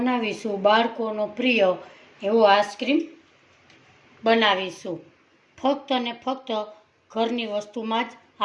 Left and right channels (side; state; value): both; identical; correlation 1.00